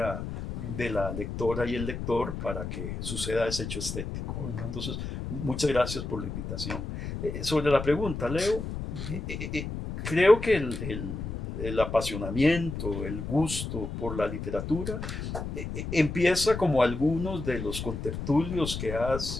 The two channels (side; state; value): left; noise; rumble, 6 dB below the sound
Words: de la lectora y el lector para que suceda ese hecho estético. Entonces, muchas gracias por la invitación. Sobre la pregunta, Leo, creo que el apasionamiento, el gusto por la literatura empieza como algunos de los contertulios que